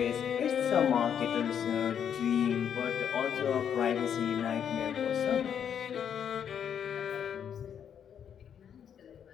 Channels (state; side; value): quieter; right; 8.4 dB